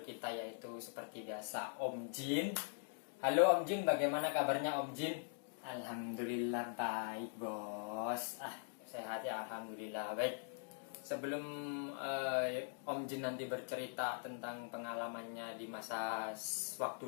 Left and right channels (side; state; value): right; silent; digital silence